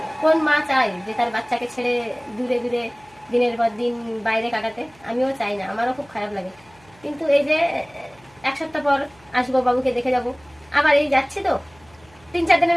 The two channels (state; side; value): noise; right; hum, 29 dB below the sound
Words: কোন মা চায় যে তার বাচ্চাকে ছেড়ে দূরে দূরে দিনের পর দিন বাইরে কাটাতে? আমিও চাই না, আমারও খুব খারাপ লাগে। কিন্তু এই যে এক সপ্তাহ পর আসবো, বাবুকে দেখে যাব। আবার এই যাচ্ছি তো 3-4 দিনের